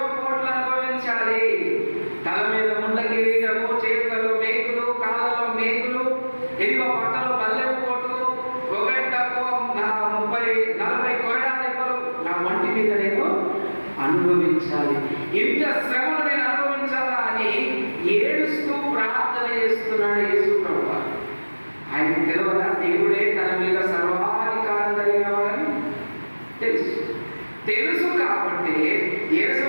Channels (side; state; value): both; inverted; correlation -1.00